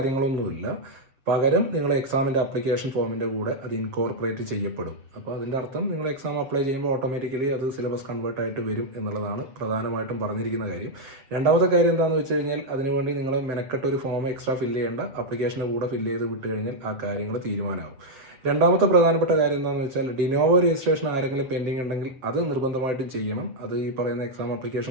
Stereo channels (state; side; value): late; left; 7.6 ms